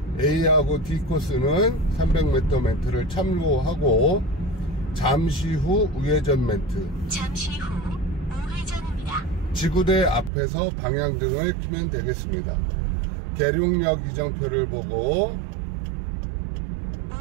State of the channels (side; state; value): left; drops out; at 10.3 s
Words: A하고 D 코스는 300m 멘트를 참고하고 잠시 후 우회전 멘트. 잠시 후 우회전입니다. 지구대 앞에서 방향등을 켜면 되겠습니다. 계룡역 이정표를 보고